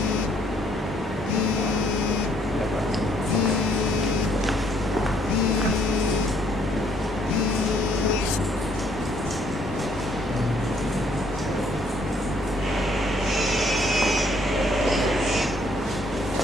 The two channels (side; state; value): both; normal; correlation 0.66